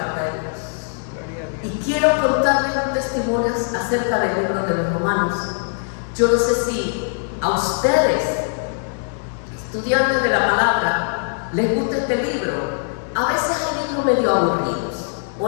de Dios. Y quiero contarles un testimonio acerca del libro de los Romanos. Yo no sé si a ustedes, estudiantes de la palabra, les gusta este libro. A veces hay libros medio aburridos.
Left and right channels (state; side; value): silent; right; digital silence